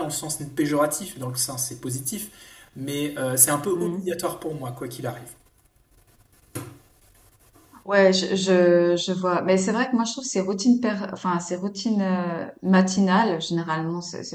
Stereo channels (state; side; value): identical; both; correlation 1.00